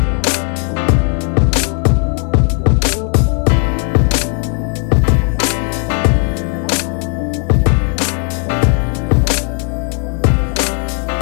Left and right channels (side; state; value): right; quieter; 38.8 dB